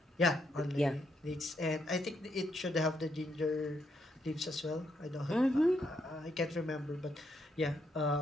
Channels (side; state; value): both; normal; correlation 0.77